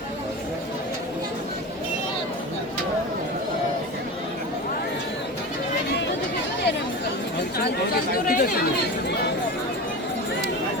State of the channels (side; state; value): both; normal; correlation 0.28